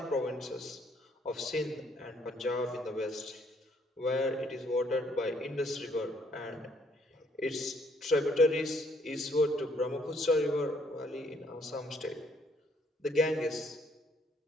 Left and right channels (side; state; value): both; normal; correlation 0.67